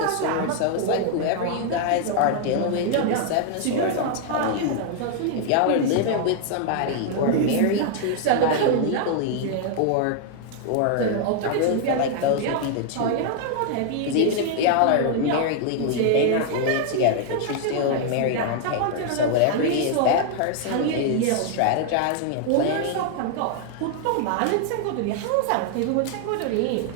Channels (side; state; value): both; different; correlation 0.00